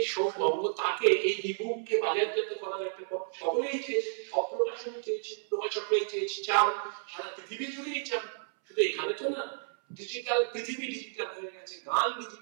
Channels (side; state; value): left; silent; 57 dB below the other